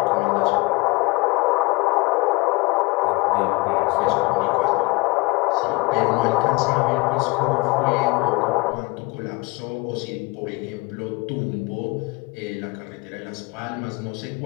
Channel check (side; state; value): right; quieter; 24.6 dB